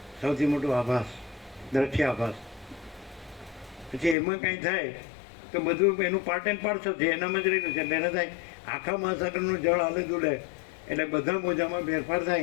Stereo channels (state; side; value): drops out; right; at 4.2 s